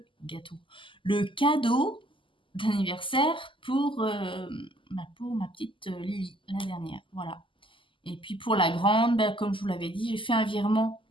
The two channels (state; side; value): late; right; 0.25 ms